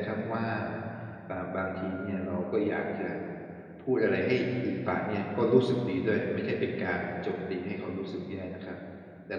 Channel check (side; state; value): both; identical; correlation 1.00